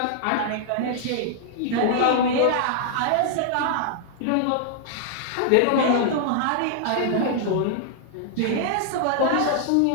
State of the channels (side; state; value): both; different; correlation -0.01